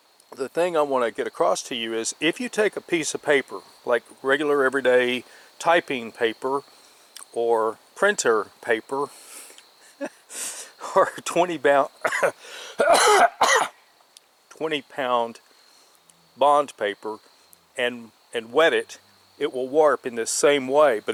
the thing I want to get across to you is, if you take a piece of paper, like regular everyday typing paper or printer paper, or 20-pound bond paper, and wet it, it will warp in this same way,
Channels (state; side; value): identical; both; correlation 1.00